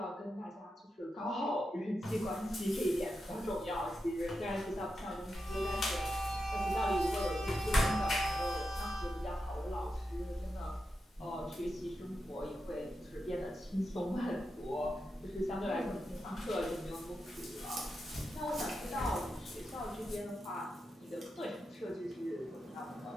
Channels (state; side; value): normal; both; correlation 0.88